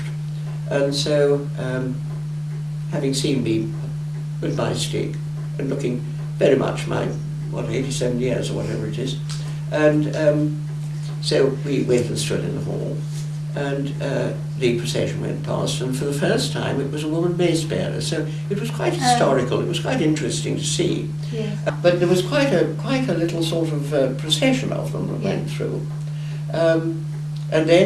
And so, having seen me with my stick and looking very much my, 87 years or whatever it is, and so we went and stood in the hall, and the procession went past, and for the first time it was a woman mace bearer, so it was quite historical, it was quite interesting to see. Yes. But there was quite a little sort of procession of them that went through. And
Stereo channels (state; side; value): identical; both; correlation 1.00